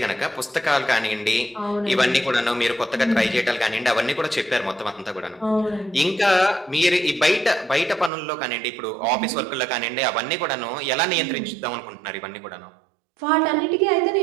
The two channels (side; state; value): left; drops out; at 8.1 s